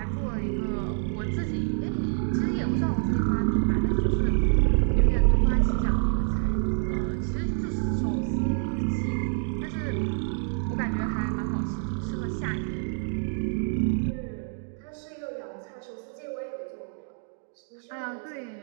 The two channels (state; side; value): silent; left; 60 dB below the other